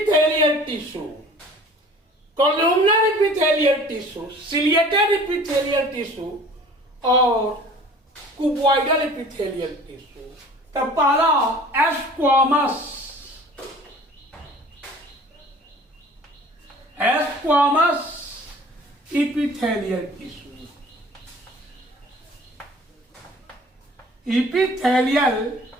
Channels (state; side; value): normal; both; correlation 0.47